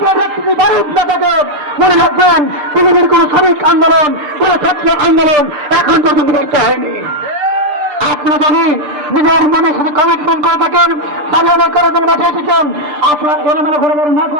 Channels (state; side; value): late; left; 6.7 ms